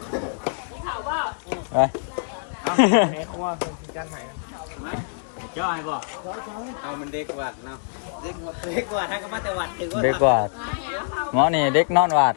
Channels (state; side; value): silent; right; digital silence